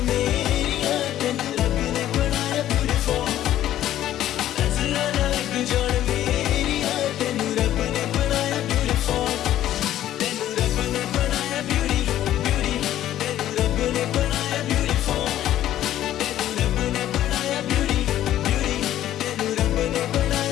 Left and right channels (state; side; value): quieter; right; 12.6 dB